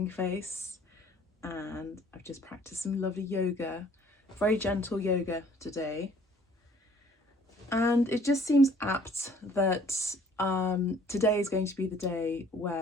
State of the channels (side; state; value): both; normal; correlation 0.57